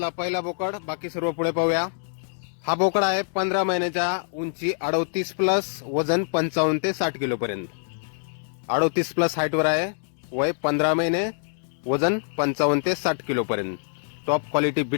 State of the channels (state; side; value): silent; right; digital silence